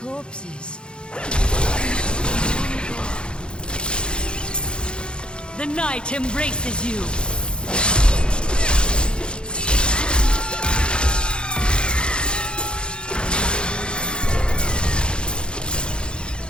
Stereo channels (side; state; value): right; late; 0.052 ms